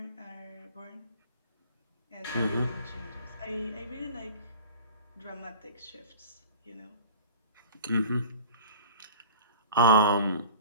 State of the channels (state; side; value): inverted; both; correlation -0.39